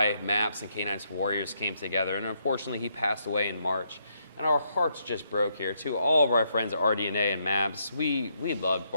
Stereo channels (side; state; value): both; inverted; correlation -0.76